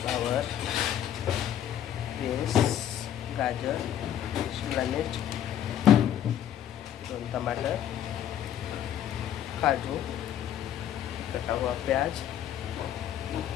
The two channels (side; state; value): right; quieter; 10.4 dB